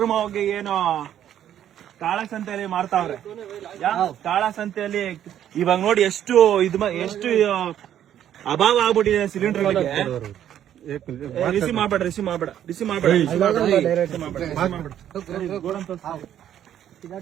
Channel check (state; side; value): quieter; left; 10.7 dB